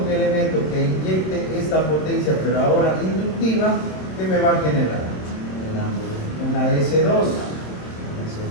un elemento que inyecte esta potencia, pero ahora inductiva, ¿qué me va a generar? El ángulo. Una S2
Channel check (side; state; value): right; late; 27 ms